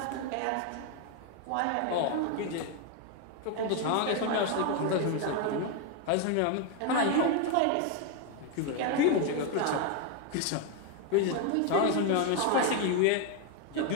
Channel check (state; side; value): different; both; correlation 0.01